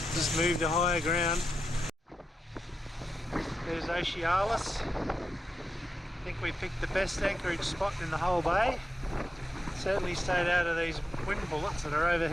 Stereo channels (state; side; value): normal; both; correlation 0.88